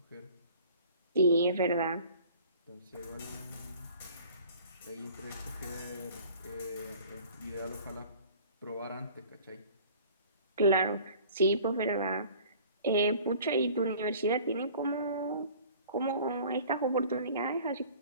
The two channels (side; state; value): both; inverted; correlation -0.48